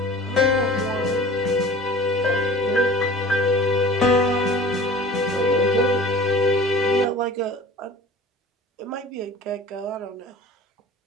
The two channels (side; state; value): both; normal; correlation 0.42